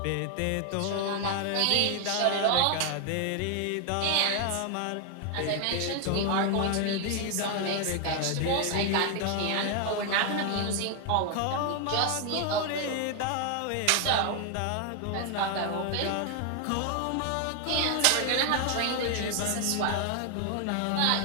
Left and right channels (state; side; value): different; both; correlation 0.00